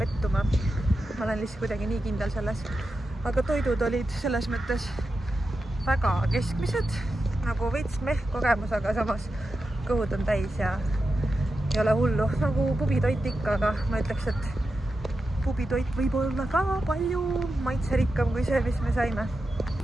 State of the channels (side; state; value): both; normal; correlation 0.90